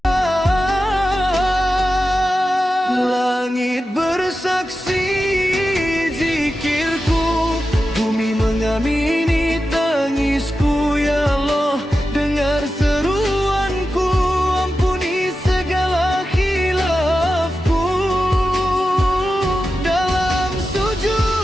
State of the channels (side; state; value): both; normal; correlation 0.91